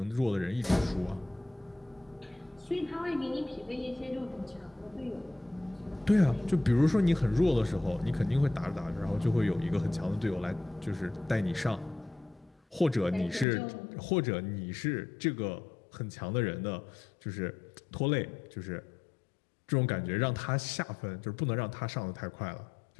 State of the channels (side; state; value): right; drops out; at 13.5 s